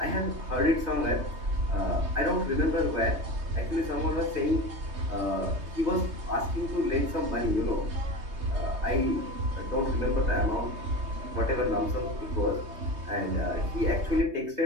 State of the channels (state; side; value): late; left; 3.2 ms